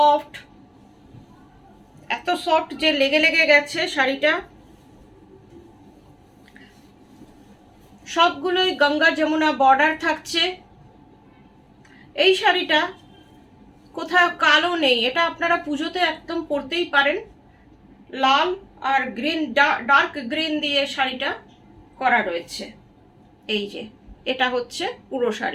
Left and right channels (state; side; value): identical; both; correlation 1.00